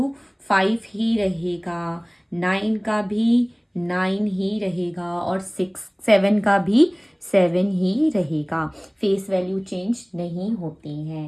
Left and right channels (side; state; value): both; identical; correlation 1.00